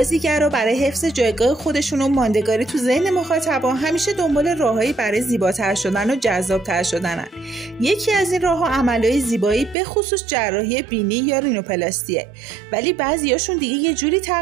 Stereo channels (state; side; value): drops out; left; at 9.8 s